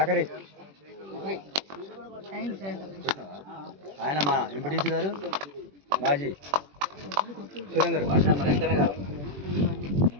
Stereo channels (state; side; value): late; left; 21 ms